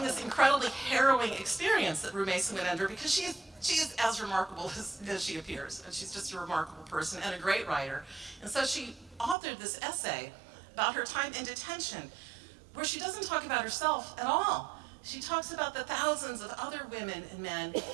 this incredibly harrowing experience that Rumesa went under, because she is as remarkable as she appears, and she's just a remarkable person and a great writer. And so she authored this essay about her time in detention, where she doesn't talk about herself at all. She talks about the thousands of other women and men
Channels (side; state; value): left; drops out; at 9.3 s